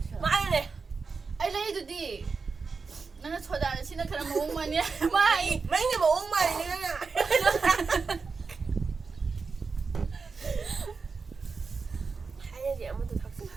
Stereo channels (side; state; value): left; quieter; 4.8 dB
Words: chức. Mãi này. Ai lấy tụi đi. Nó cho đàn xin nó khá là muốn mà nhé. Mai. Mấy người mà uống mày đi nha. Hay là gì mà tôi thật sự